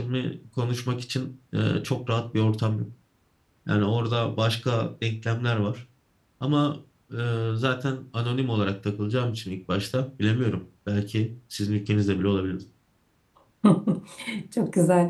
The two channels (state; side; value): identical; both; correlation 1.00